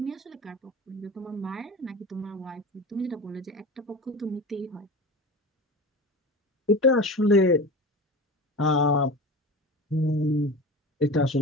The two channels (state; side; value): normal; both; correlation 0.31